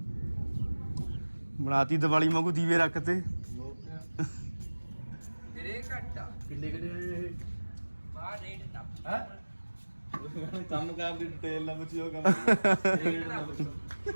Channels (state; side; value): inverted; both; correlation -1.00